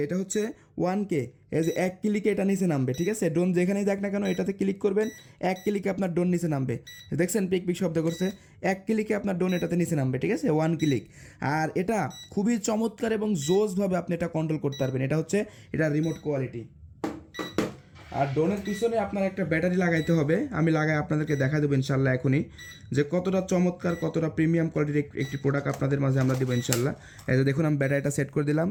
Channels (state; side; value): identical; both; correlation 1.00